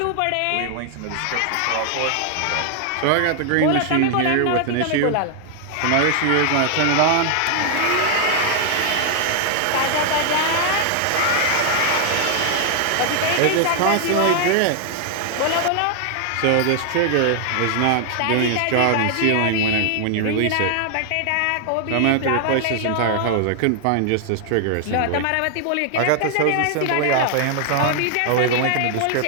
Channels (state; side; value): different; both; correlation 0.00